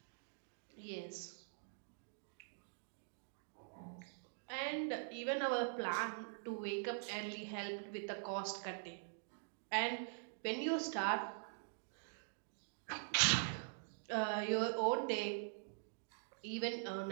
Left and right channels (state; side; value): silent; left; digital silence